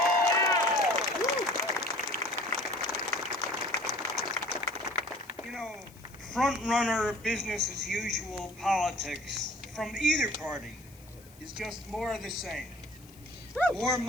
You know, front-runner, business-as-usual politics from either party is just more of the same. More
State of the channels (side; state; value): left; noise; hiss, 24 dB below the sound